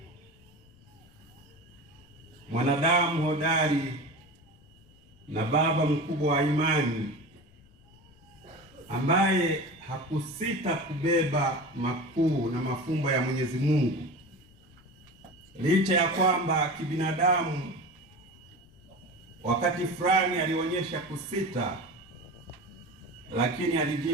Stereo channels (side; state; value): left; noise; rumble, 27 dB below the sound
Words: mwanadamu hodari na baba mkubwa wa imani, ambaye hakusita kubeba makuu na mafumbo ya Mwenyezi Mungu, licha ya kwamba kibinadamu wakati fulani alionyesha kusita, lakini